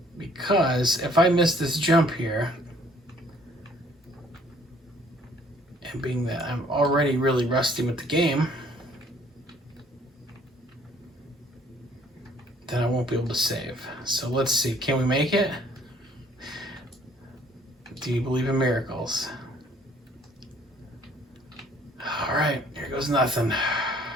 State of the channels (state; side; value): normal; both; correlation 0.59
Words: Because if I miss this jump here, and being that I'm already really rusty with the game, then I won't be able to save. So let's see, can we make it? Do you believe in miracles? All right, here goes nothing.